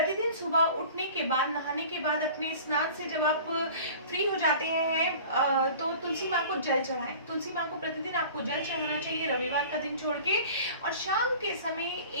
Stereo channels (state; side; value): inverted; both; correlation -0.43